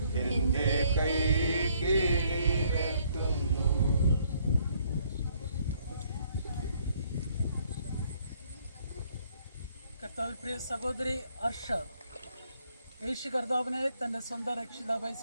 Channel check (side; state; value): both; inverted; correlation -0.67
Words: എന്റെ കൈ കീഴിലെത്തുന്നു. കർത്താവിൽ പ്രിയ സഹോദരി അർഷ യേശു കർത്താവിനെ തൻ്റെ സ്വന്തം രക്ഷിതാവായി